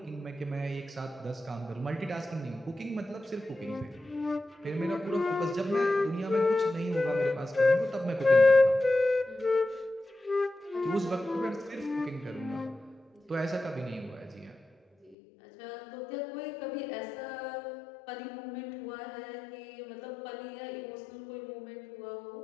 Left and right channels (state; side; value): drops out; right; at 15.2 s